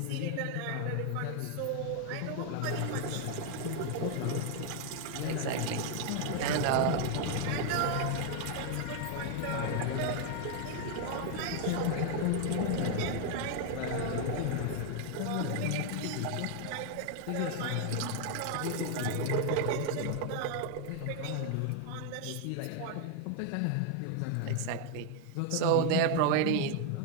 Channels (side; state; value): both; different; correlation 0.00